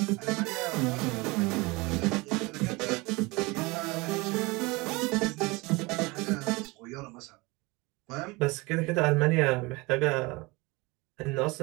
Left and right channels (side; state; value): left; quieter; 24.4 dB